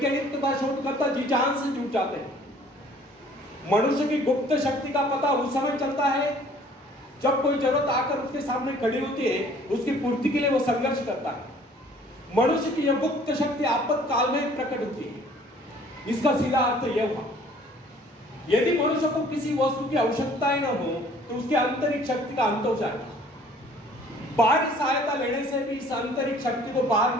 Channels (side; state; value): both; normal; correlation 0.54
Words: तथा शोधकर्ता जी जान से जुट जाते हैं। मनुष्य की गुप्त शक्ति का पता उस समय चलता है जब कोई जरूरत आकर उसके सामने खड़ी होती है, उसकी पूर्ति के लिए वो संघर्ष करता है। मनुष्य की यह गुप्त शक्ति आपातकाल में प्रकट होती है। इसका सीधा अर्थ यह हुआ, यदि मनुष्य को किसी वस्तु की आवश्यकता ही न हो तो उसकी आंतरिक शक्ति का अंत हो जाएगा। बाहरी सहायता लेने से भी इस आंतरिक शक्ति को बाहर